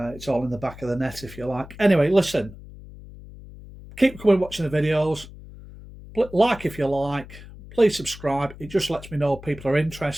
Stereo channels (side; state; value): left; noise; hum, 17 dB below the sound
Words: the back of the net, if you like. Anyway, listen, keep coming watching the videos. Like if you like, please subscribe. It just lets me know people are